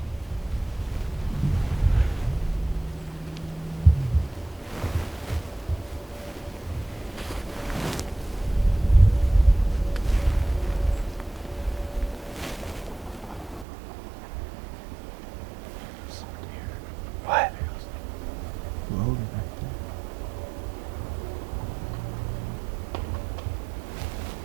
What? Logan right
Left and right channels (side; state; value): left; drops out; at 13.7 s